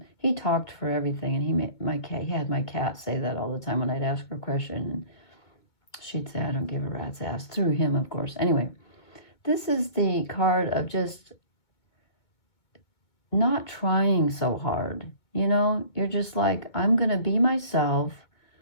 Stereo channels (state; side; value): late; right; 2.1 ms